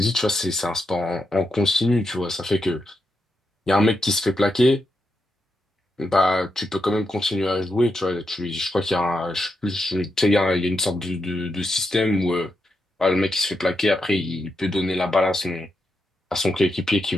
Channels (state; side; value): normal; both; correlation 0.84